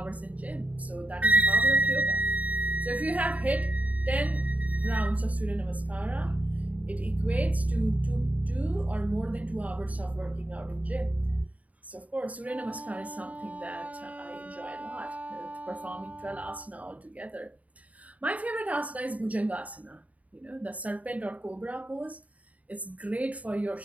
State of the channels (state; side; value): late; left; 0.071 ms